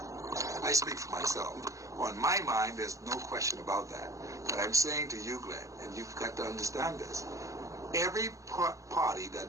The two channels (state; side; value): late; left; 0.15 ms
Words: I speak for myself. On my mind, there's no question about that. But I'm saying to you, Glenn, and you've got to understand this, every party